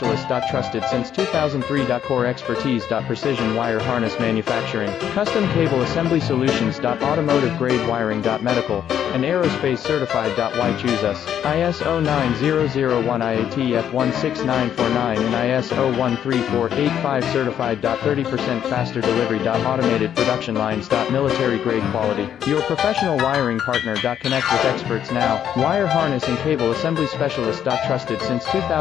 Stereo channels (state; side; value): quieter; right; 9.6 dB